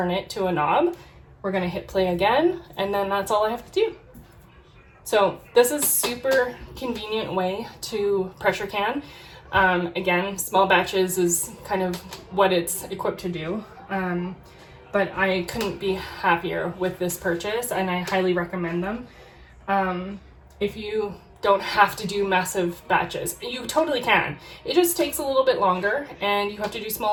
it to a knob. We're gonna hit play again, and then that's all I have to do. So this is super convenient way to pressure can. Again, small batches is kind of what it's equipped to do. But I couldn't be happier with this purchase, and I highly recommend them. If you don't have to do massive batches, you totally can. It just takes a little bit longer, and you have to do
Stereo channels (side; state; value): both; identical; correlation 1.00